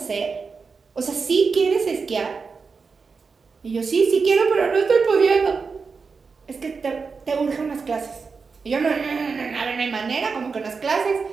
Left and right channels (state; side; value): quieter; left; 4.9 dB